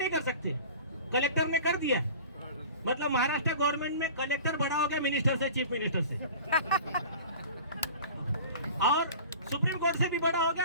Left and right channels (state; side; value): inverted; both; correlation -0.40